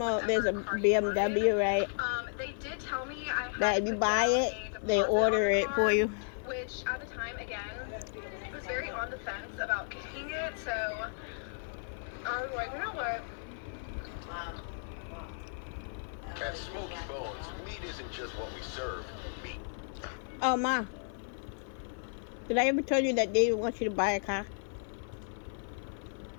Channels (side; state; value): right; silent; 55 dB below the other